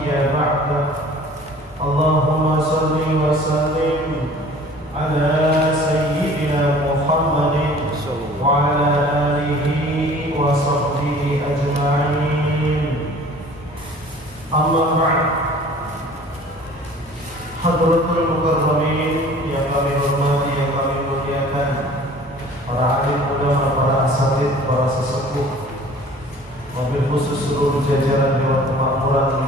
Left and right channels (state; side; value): normal; both; correlation 0.48